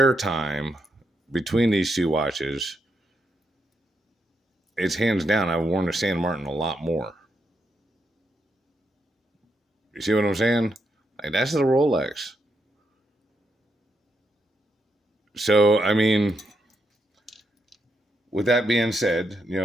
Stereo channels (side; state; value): both; normal; correlation 0.81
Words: time between these two watches, it's hands down. I've worn the San Martin a lot more. You see what I'm saying? Like that's the Rolex. So I mean, with that being said, you